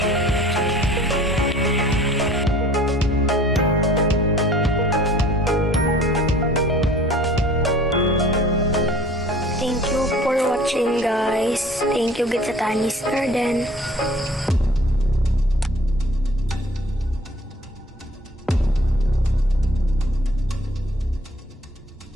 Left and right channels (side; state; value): both; normal; correlation 0.50